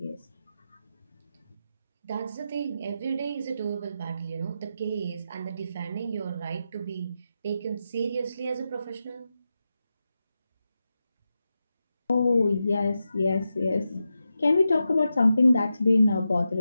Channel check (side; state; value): both; inverted; correlation -0.89